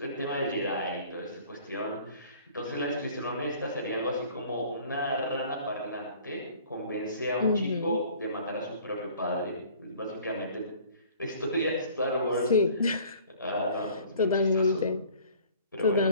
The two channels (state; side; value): inverted; both; correlation -0.51